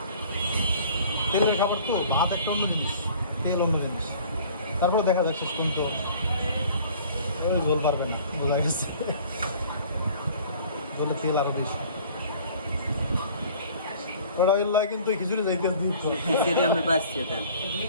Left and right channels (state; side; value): inverted; both; correlation -0.50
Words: তেলের খাবার তো, ভাত একটা অন্য জিনিস, তেল অন্য জিনিস। তারপরে দেখা যাক শেষ পর্যন্ত ওই ঝোল পারবে না, বোঝা গেছে। ঝোলে তেল আরো বেশি। ওটা ওই লয় কিন্তু খিচুড়ি যাইতে দুধ সেটা আমি পাচ্ছি দেন।